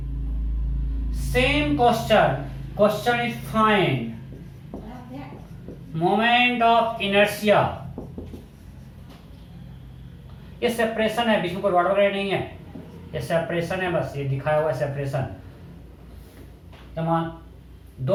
Same question is find moment of inertia. ये सेपरेशन है, बीच में कोई रॉड वगैरह नहीं है. ये सेपरेशन है, बस ये दिखाया हुआ है सेपरेशन. तमाम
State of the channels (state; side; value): identical; both; correlation 1.00